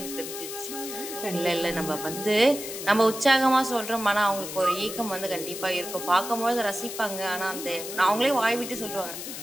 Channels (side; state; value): left; noise; hiss, 8 dB below the sound